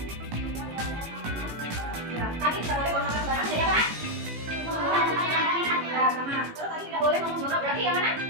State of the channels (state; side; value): late; left; 18 ms